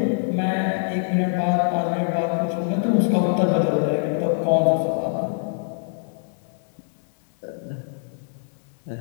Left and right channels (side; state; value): right; silent; digital silence